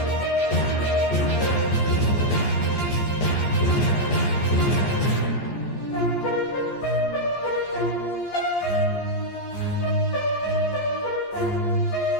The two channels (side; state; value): right; late; 14 ms